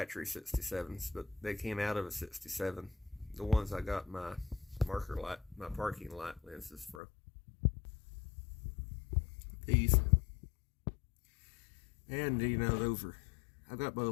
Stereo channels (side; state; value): right; drops out; at 7.0 s